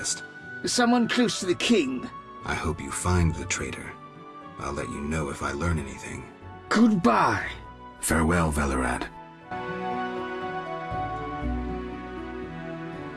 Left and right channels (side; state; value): both; identical; correlation 1.00